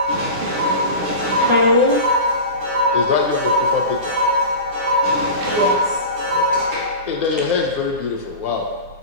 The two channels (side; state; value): left; late; 9.7 ms